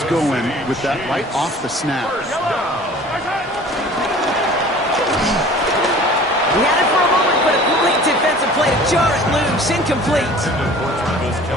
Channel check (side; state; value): both; normal; correlation 0.46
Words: going with that right off the snap. He had it for a moment, but a complete defensive play to jar it loose. Incomplete.